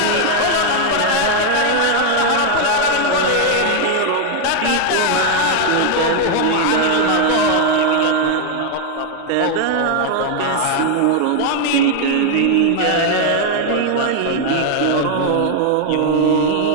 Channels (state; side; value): different; both; correlation 0.00